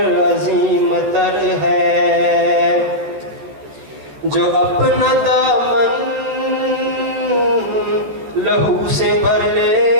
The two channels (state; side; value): late; left; 13 ms